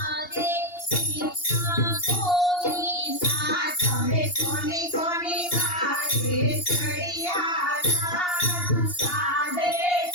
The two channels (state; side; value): late; right; 2.8 ms